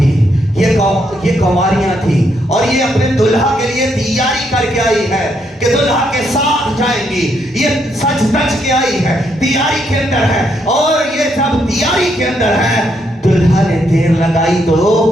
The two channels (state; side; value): normal; both; correlation 0.76